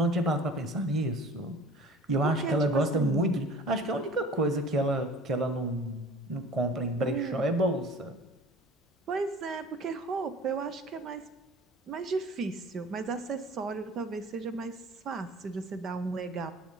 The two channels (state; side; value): normal; both; correlation 0.44